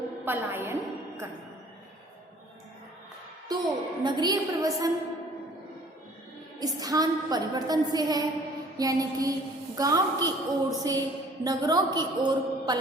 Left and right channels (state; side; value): normal; both; correlation 0.53